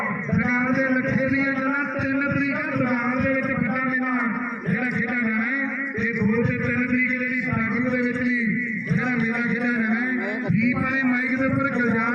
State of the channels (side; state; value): both; identical; correlation 1.00